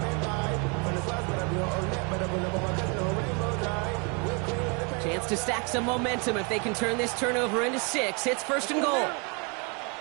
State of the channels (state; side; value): quieter; left; 33.3 dB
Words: Chance to stack some momentum if they can turn this turnover into 6. It's 1st and goal.